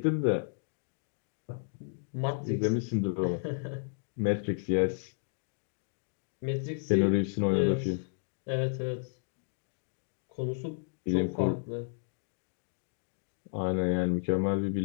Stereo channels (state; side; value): silent; right; digital silence